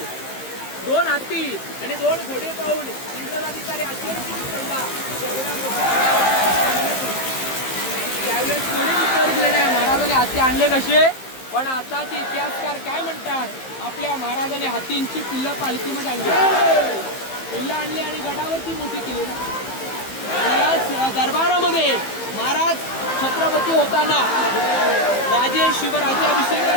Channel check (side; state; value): right; late; 15 ms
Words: 2 हत्ती आणि 2 घोडे पाहून इंग्रज अधिकारी आश्चर्यचकित पडला. त्यावेळेस कोणी उत्तर दिलं नाही महाराजांनी हत्ती आणले कसे. पण आता ते इतिहासकार काय म्हणतात, आपल्या महाराजांनी हत्तींची पिल्लं पालखीमध्ये आणली, पिल्लं आणली आणि गडावरती मोठी केली. या दरबारामध्ये महाराज छत्रपती होताना राजे